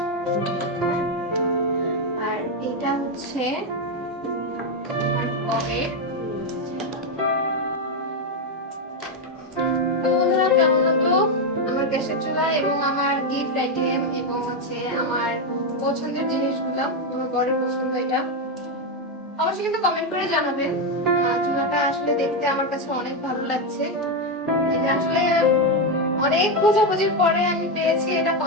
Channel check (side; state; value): both; normal; correlation 0.06